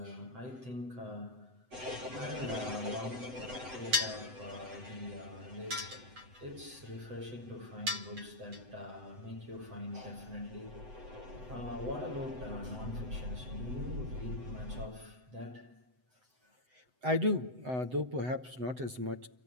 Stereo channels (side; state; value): left; late; 7.9 ms